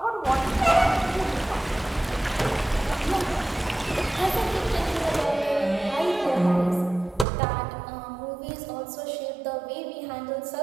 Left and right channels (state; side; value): drops out; left; at 7.2 s